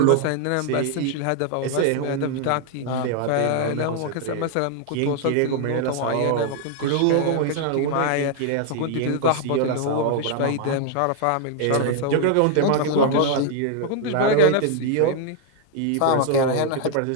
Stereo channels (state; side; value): different; both; correlation 0.00